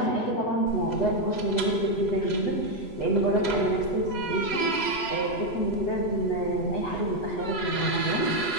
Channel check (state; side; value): late; right; 8.2 ms